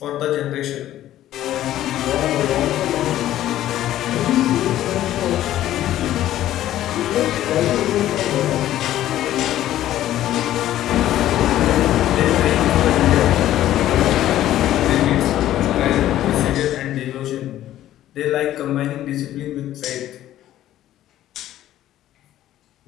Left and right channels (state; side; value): quieter; right; 13.2 dB